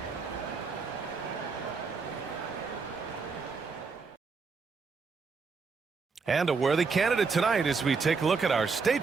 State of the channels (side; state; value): left; quieter; 4.9 dB